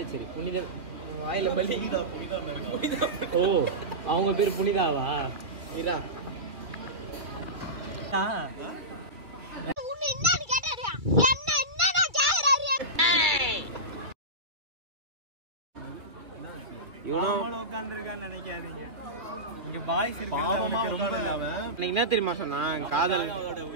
சரி புனித வாயில பலி. ஓ அவங்க பேரு புனிதாவா? இதா என்ன தெரியுமா சொன்னான்? காதல்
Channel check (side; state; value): left; late; 2.3 ms